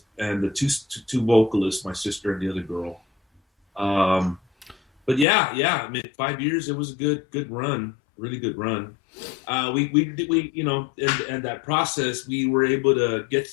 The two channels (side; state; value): right; drops out; at 5.2 s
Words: and the two vocalists, my sister and the other girl. But yeah, I mean, 5 years, it was a good run, really good run. We and that process, we were able to